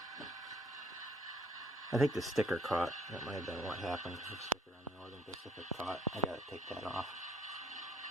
I think the sticker caught. That might have been what happened. The sticker on the Northern Pacific caught. I gotta take that off.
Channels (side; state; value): both; normal; correlation 0.62